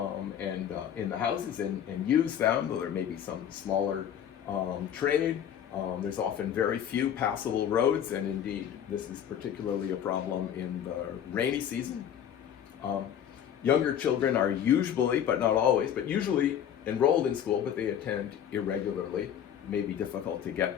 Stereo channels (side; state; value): right; quieter; 9.4 dB